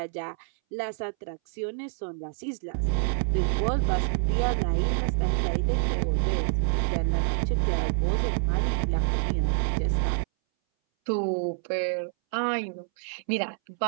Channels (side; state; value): left; silent; 60 dB below the other